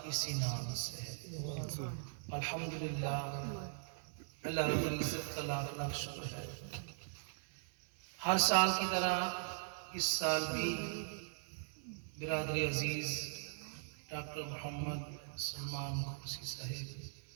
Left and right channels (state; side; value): silent; left; 51 dB below the other